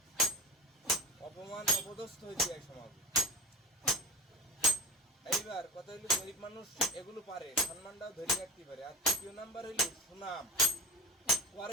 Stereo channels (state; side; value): normal; both; correlation 0.31